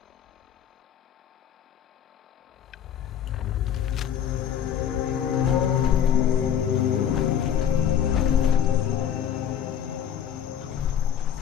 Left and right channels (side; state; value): right; quieter; 9.1 dB